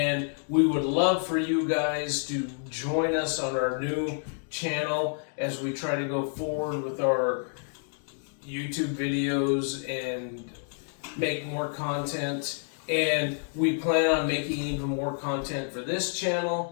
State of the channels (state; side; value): silent; right; 59 dB below the other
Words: we would love for you guys to join us on our new channel as we try to go forward with our YouTube videos and make more content. And we plan on making even more content for this